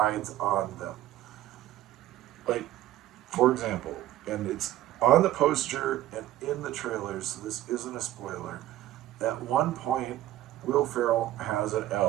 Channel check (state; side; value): quieter; left; 14.2 dB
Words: on them. Like, for example, and it's on the poster and in the trailers, so this isn't a spoiler, at one point, Will Ferrell has an